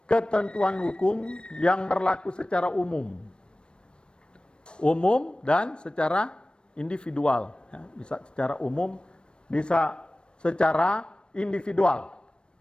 ketentuan hukum yang berlaku secara umum. Umum dan secara individual. Bisa secara umum, bisa secara individual.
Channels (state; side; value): late; right; 0.055 ms